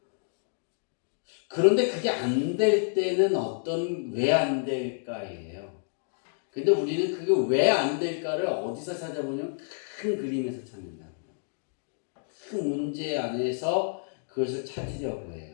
그런데 그게 안 될 때는 왜 안 될까예요. 근데 우리는 그게 왜 안 될까를 어디서 찾아보냐면 큰 그림에서 찾는다고요. 큰 문제 안에서 그것을 찾으려고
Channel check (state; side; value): silent; right; digital silence